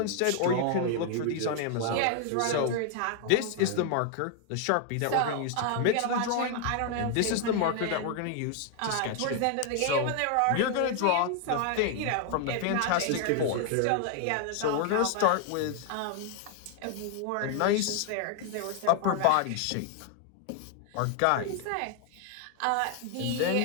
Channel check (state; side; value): different; both; correlation 0.00